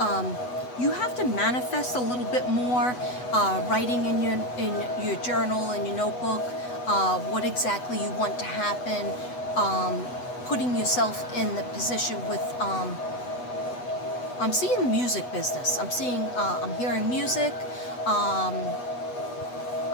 you have to manifest a little bit more, writing in your journal and your notebook, what exactly you want to happen, putting yourself in the position with. I'm seeing the music business. I'm hearing music.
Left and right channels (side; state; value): right; late; 8.1 ms